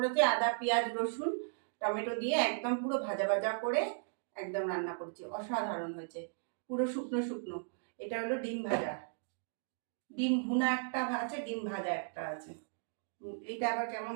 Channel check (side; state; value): left; silent; digital silence